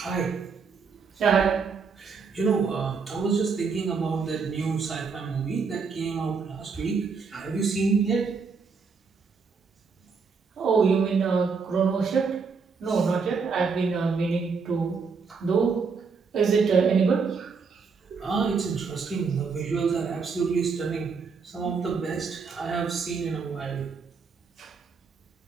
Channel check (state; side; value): quieter; left; 5.2 dB